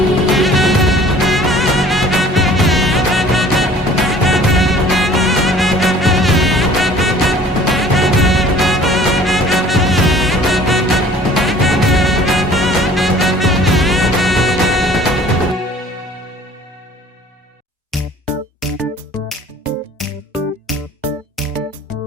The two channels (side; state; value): both; normal; correlation 0.50